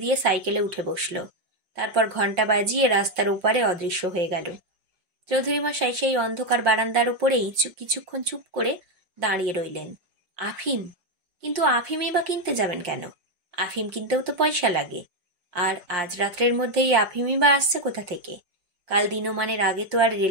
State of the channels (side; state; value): left; late; 5.6 ms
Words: দিয়ে সাইকেলে উঠে বসল। তারপর ঘন্টা বাজিয়ে রাস্তার ওপারে অদৃশ্য হয়ে গেল। চৌধুরী মশাই সেই অন্ধকার বারান্দার ওপরেই কিছুক্ষণ চুপ করে দাঁড়িয়ে রইলেন। আফিম? কিন্তু আফিমই বা কিনতে যাবেন কেন? আফিম কিনতেও তো পয়সা লাগে। আর আজ রাত্রের মধ্যেই আফিমই বা আসছে কোথা থেকে? কাল দিনমানের আগে তো আর